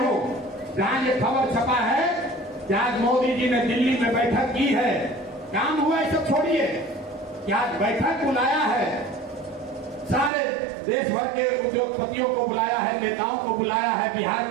जहां ये खबर छपा है कि आज मोदी जी ने दिल्ली में बैठक की है। काम हुआ ये सब छोड़िए कि आज बैठक बुलाया है, सारे देश भर के उद्योगपतियों को बुलाया है, नेताओं को बुलाया है, बिहार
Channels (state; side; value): drops out; left; at 10.3 s